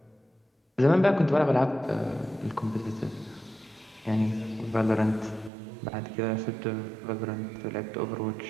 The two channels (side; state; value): left; drops out; at 5.5 s